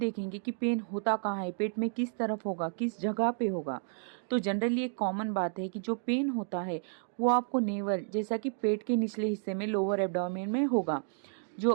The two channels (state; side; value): silent; left; digital silence